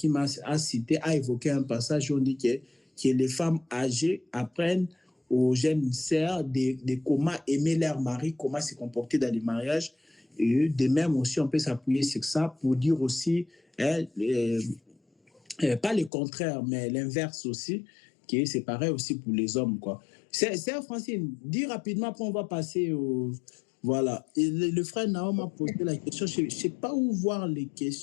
a évoqué un passage où on dit que les femmes âgées apprennent aux jeunes sœurs de comment aimer leur mari, comment se comporter dans les mariages. Et de même aussi, on peut s'appuyer sur ça pour dire aussi, pas le contraire, mais l'inverse aussi, que c'est pareil aussi pour les hommes, quoi. C'est Francine, dis rapidement, après on va passer au... Voilà. Et le frère Naom a posé la question. Je ne sais pas où voir les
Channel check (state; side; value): drops out; right; at 16.1 s